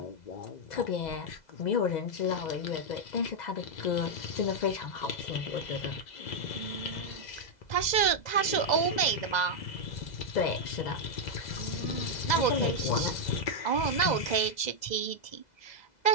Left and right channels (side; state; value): right; late; 2.0 ms